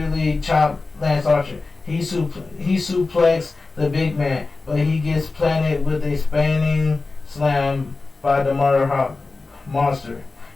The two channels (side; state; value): right; quieter; 3.7 dB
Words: chops Lance Archer. He suplexes the big man, but he gets planted with a spinning slam by the Motorhawk Monster.